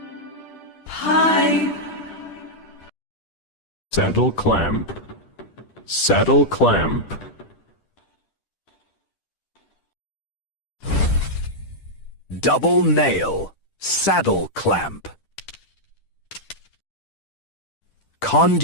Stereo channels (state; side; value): late; right; 10 ms